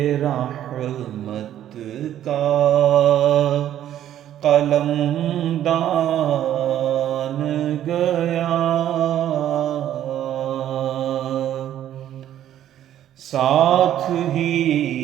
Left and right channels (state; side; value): quieter; left; 11.5 dB